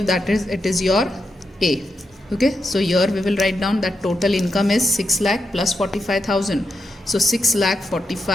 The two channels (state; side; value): normal; both; correlation 0.85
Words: that is, it is your A. Okay, so here we will write down that total income is 6 lakh plus 45,000. So 6 lakh